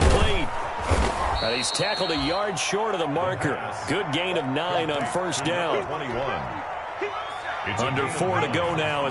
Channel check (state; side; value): identical; both; correlation 1.00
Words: And he's tackled a yard short of the marker. Good gain of 9 on first down. 21. Under 4 to go now